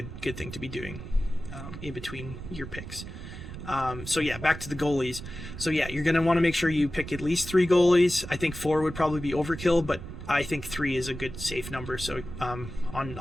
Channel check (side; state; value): right; noise; rumble, 10 dB below the sound